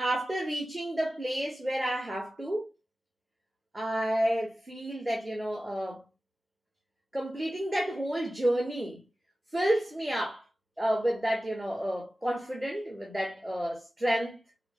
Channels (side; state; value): both; normal; correlation 0.95